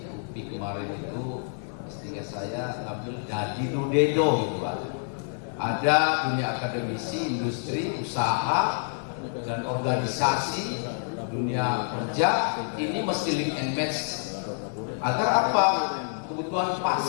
UPI kemarin itu istilah saya ngambil jadi dudedo gitu Pak. Ada dunia akademisi, industri, usaha, dan organisasi, dunia kerja, ini mesti link and match. Agar apa? Kebutuhan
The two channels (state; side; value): silent; right; digital silence